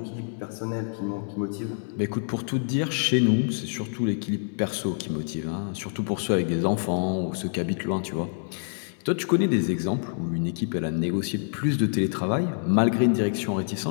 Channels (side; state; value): right; silent; 60 dB below the other